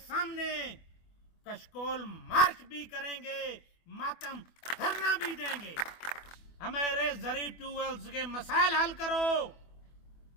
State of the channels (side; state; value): right; late; 24 ms